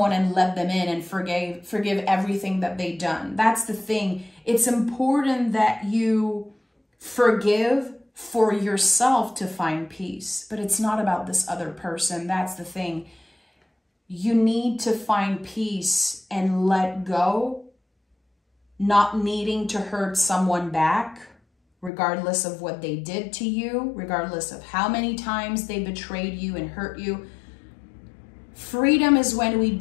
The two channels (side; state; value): right; drops out; at 21.9 s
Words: and let them in and forgive everything that they've done. That's the thing. It's important that you forgive for yourself to find peace, but it's not about this other person. That's the thing. You need to find peace and let go, not needing to hurt someone back, regardless of what they did to you, regardless of how many times they betrayed you and hurt you. Freedom is when we